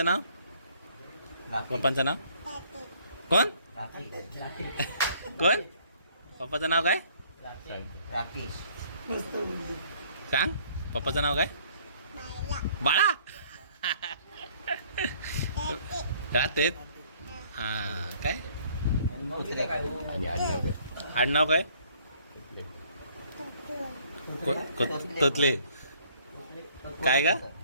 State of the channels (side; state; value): both; inverted; correlation -0.60